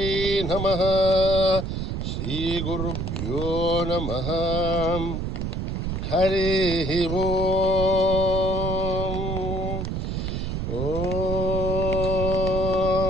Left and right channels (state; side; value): noise; right; rumble, 3 dB below the sound